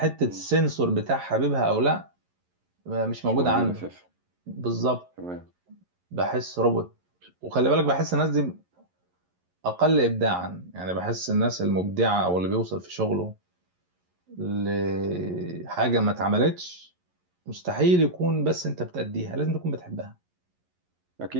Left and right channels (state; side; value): late; left; 11 ms